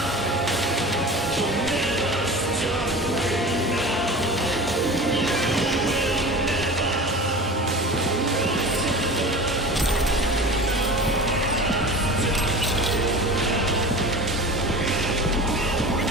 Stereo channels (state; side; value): normal; both; correlation 0.34